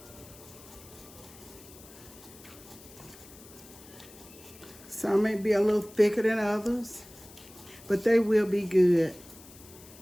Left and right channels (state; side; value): noise; left; hiss, 20 dB below the sound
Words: Some may be a little thicker than others, but they will be good.